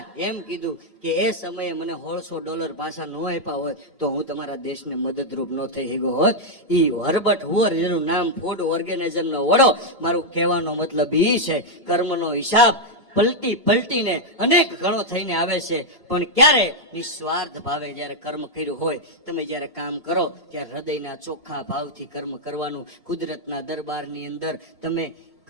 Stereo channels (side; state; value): both; normal; correlation -0.01